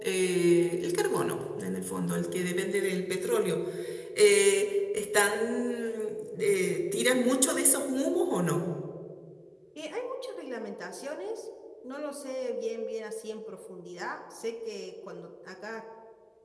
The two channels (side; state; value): both; identical; correlation 1.00